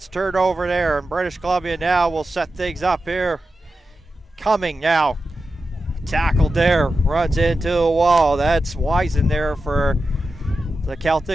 turned over there, and British Columbia now will set things up here. Cumming now. Tackled there, runs into a wall. That's Wisen there for the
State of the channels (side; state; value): both; normal; correlation 0.91